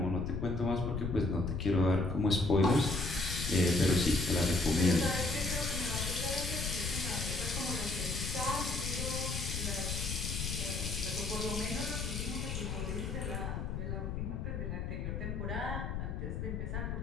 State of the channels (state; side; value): noise; left; rumble, 3 dB below the sound